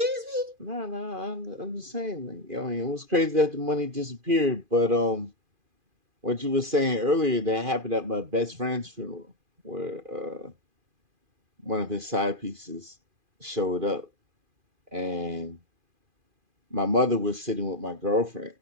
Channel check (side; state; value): left; late; 2.4 ms